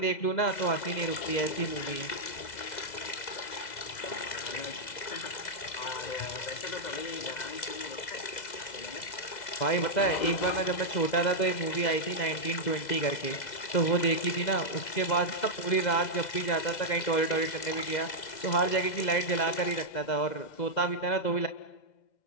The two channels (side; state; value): right; late; 2.0 ms